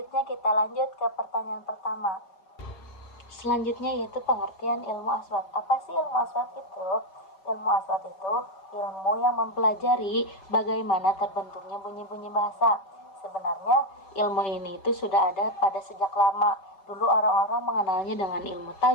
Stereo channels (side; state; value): right; late; 5.2 ms